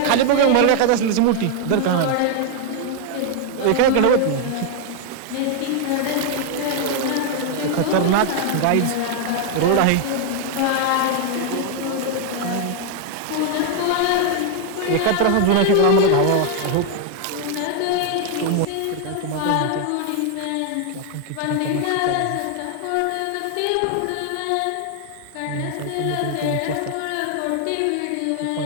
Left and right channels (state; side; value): different; both; correlation 0.00